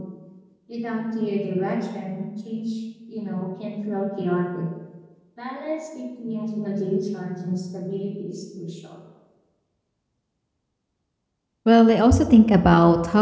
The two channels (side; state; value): both; identical; correlation 1.00